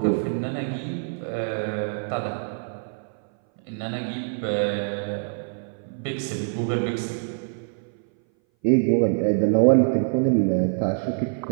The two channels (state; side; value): silent; left; 59 dB below the other